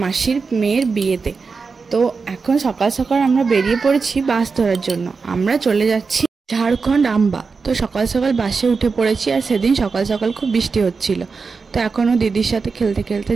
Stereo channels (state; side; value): quieter; left; 4.8 dB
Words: মাসির মেয়ের বিয়েতে। তো এখন সকাল সকাল আমরা বেরিয়ে পড়েছি বাস ধরার জন্য। আমরা চলে যাচ্ছি ঝাড়খণ্ড আম্বা। তো সকাল সকাল বাসে উঠে পড়েছি, আর সেদিন সকাল সকাল খুব বৃষ্টি হচ্ছিল। তো এখনও দিদির সাথে খেলতে খেলতে